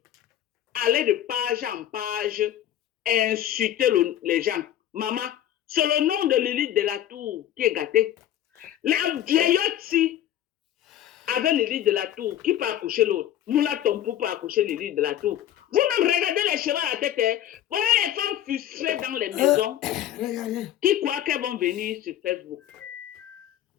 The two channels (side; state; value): right; quieter; 11.8 dB